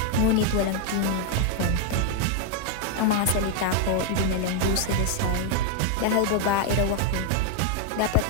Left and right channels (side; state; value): both; different; correlation 0.00